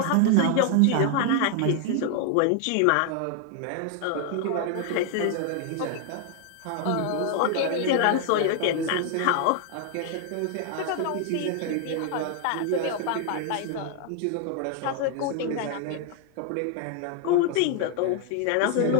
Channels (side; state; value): both; different; correlation 0.00